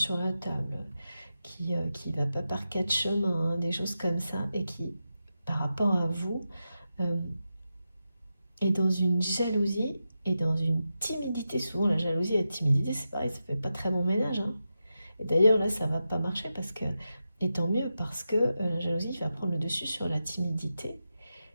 la table, qui va pas par quatre chemins, hein, des choses comme ça, et qui, par rapport à vous, est dans une jalousie et dans une timidité. Souvent, la jalousie et la timidité, c'est pareil, ça fait pas très bon ménage. Hein. Et d'ailleurs, là, ça va pas marcher parce que, et tant mieux, parce que la jalousie va prendre le dessus sur la timidité.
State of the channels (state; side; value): inverted; both; correlation -0.90